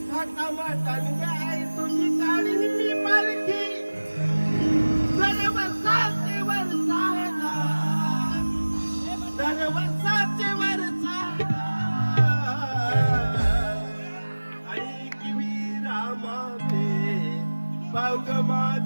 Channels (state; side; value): inverted; both; correlation -1.00